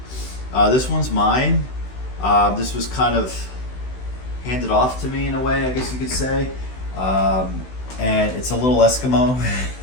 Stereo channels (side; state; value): right; late; 16 ms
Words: This one's mine. This was kind of handed off to me in a way, I guess you could say. And it's a little Eskimo,